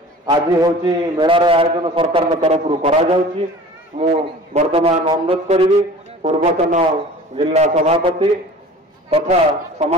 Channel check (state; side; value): normal; both; correlation 0.43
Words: आज हूँ मेलार आयोजन सरकार तरफ करा वर्तमान अनुरोध करी पूर्वतन जिला सभापति तथा